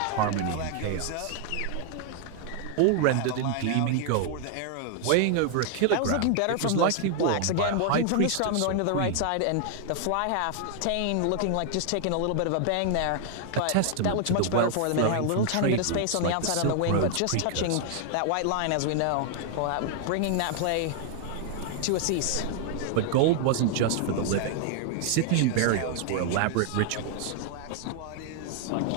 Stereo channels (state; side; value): different; both; correlation 0.00